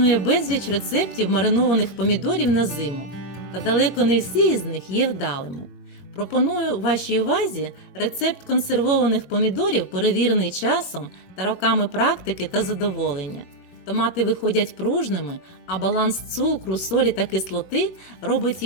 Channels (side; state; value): right; late; 21 ms